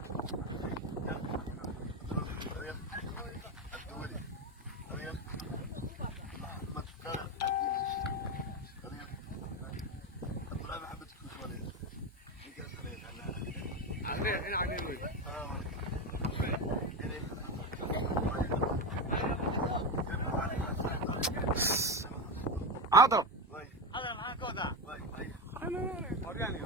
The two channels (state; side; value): normal; both; correlation 0.15